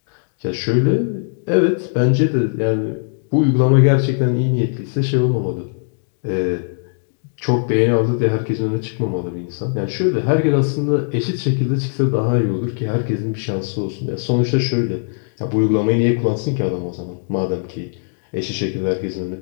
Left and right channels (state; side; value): silent; right; digital silence